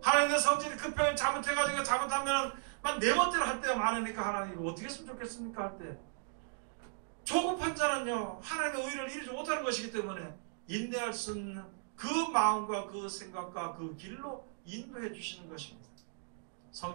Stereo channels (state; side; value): silent; left; digital silence